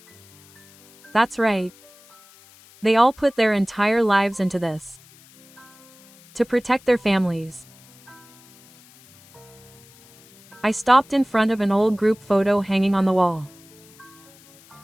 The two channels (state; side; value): noise; left; hiss, 26 dB below the sound